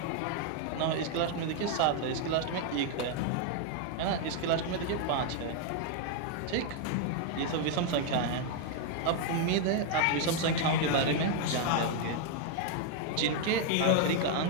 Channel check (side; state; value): both; different; correlation 0.00